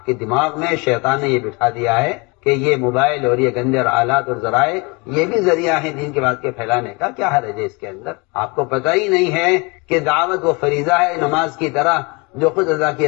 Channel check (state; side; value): quieter; right; 28.3 dB